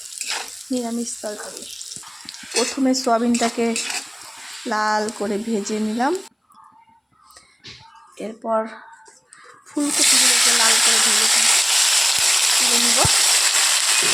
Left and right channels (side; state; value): both; identical; correlation 1.00